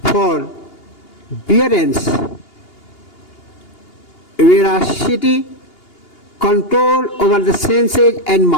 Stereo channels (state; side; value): late; right; 2.8 ms